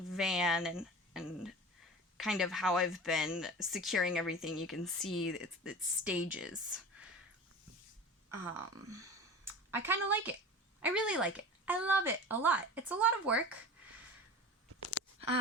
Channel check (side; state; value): both; normal; correlation 0.34